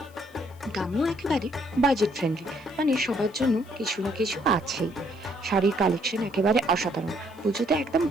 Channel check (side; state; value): left; noise; hiss, 28 dB below the sound